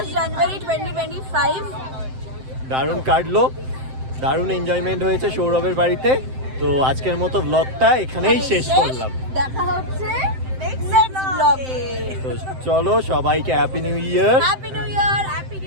জানুয়ারি 2025। দারুণ কাটলো, দারুণ এনজয়মেন্ট হয়েছে সৌরভের বাড়িতে। তো আজকের মতো ব্লগটা এখানেই শেষ করলাম। দেখা হচ্ছে নেক্সট ব্লগে। তো চলো, সবাইকে happy new year. Happy new year, happy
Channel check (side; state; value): left; late; 7.7 ms